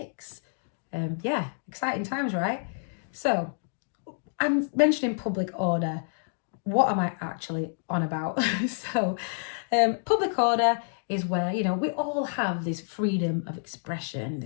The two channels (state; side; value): silent; right; digital silence